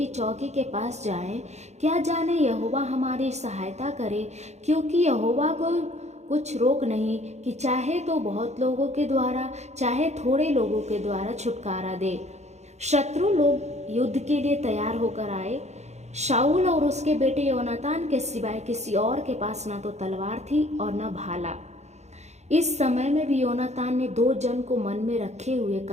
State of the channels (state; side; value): late; left; 0.32 ms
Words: चौकी के पास जाएं, क्या जाने यहोवा हमारी सहायता करे, क्योंकि यहोवा को कुछ रोक नहीं कि चाहे तो बहुत लोगों के द्वारा चाहे थोड़े लोगों के द्वारा छुटकारा दे। शत्रु लोग युद्ध के लिए तैयार होकर आए। शाऊल और उसके बेटे योनातान के सिवाय किसी और के पास न तो तलवार थी और न भाला। इस समय में भी योनातान ने 2 जन को मन में रखे हुए